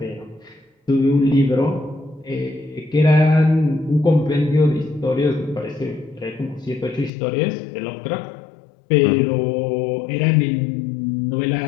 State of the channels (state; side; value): drops out; right; at 7.1 s